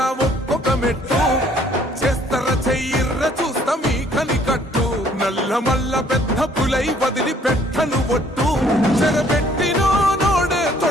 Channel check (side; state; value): both; normal; correlation 0.61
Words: ఒక్కొక్క మెట్టు చేస్తర చెయ్యిర్ర చూస్తా మీ కనికట్టు నల్ల మల్ల పెద్ద పులై వదిలి పెట్టను ఒట్టు చెరబెట్టినో నోడే